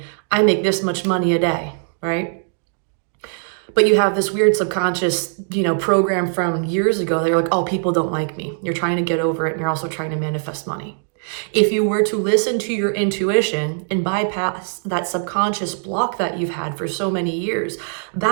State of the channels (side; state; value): left; silent; digital silence